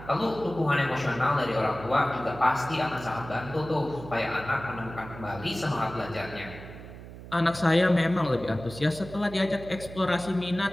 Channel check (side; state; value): right; noise; hum, 14 dB below the sound